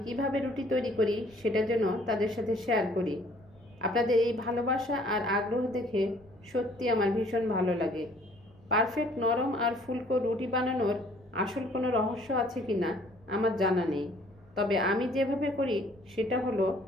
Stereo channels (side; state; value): right; noise; rumble, 27 dB below the sound